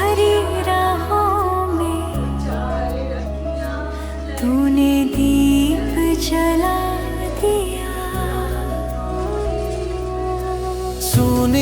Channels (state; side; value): identical; both; correlation 1.00